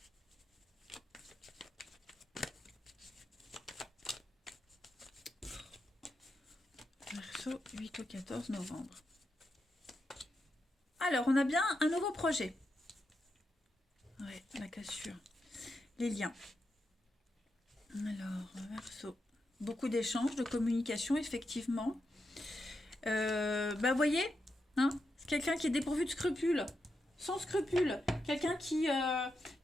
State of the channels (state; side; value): normal; both; correlation 0.85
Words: Verseau, 8 au 14 novembre. Alors, on a bien un nouveau projet. Ouais, la cassure. Les liens. Alors, Verseau. Beaucoup d'échanges, de communication, effectivement. Vous voyez, hein, c'est quelqu'un qui est dépourvu de scrupules, sans scrupules, quelqu'un